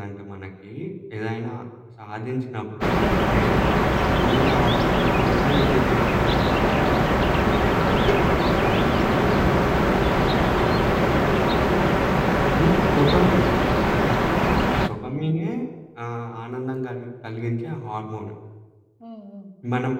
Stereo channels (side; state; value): both; identical; correlation 1.00